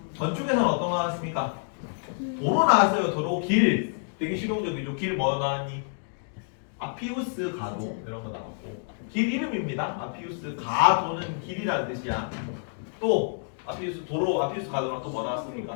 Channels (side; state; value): right; silent; 59 dB below the other